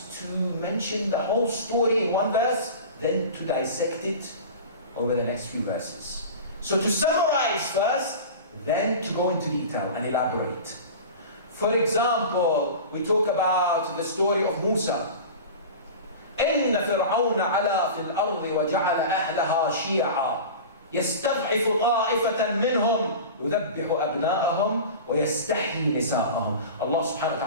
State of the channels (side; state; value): both; inverted; correlation -0.33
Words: to mention the whole story in one verse, then to dissect it over the next few verses. So to summarize first, then to go into detail and elaborate. For example, we talk about the story of Musa. إن فرعون علا في الأرض وجعل أهلها شيعا يستضعف طائفة منهم يذبح أبناءهم ويستحيي نساءهم. Allah subhanahu wa